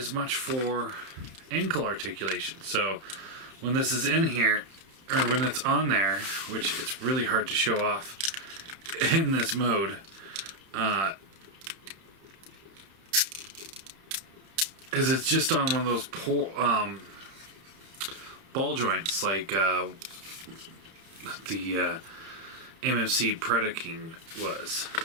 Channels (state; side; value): late; left; 31 ms